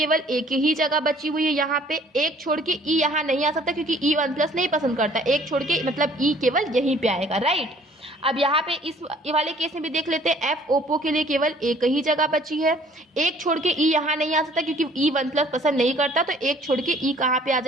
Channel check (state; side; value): normal; both; correlation 0.57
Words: एक ही जगह बची हुई है, यहाँ पे एक छोड़ के ई यहाँ नहीं आ सकता, क्योंकि ई 1 प्लस नहीं पसंद करता, एक छोड़ के मतलब ई केवल यहीं पे आएगा, राइट। अब यहाँ पे इस वाले केस में भी देख लेते हैं, एफ ओप्पो के लिए केवल एक ही जगह बची है, एक छोड़ के ई यहाँ नहीं आ सकता, क्योंकि ई 1 प्लस पसंद नहीं करता, तो एक छोड़ के ई कहाँ पे आ